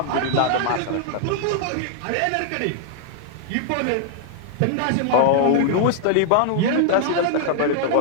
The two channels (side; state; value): both; different; correlation 0.00